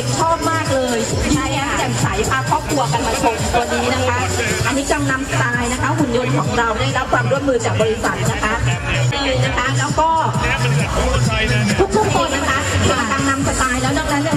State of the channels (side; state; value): both; identical; correlation 1.00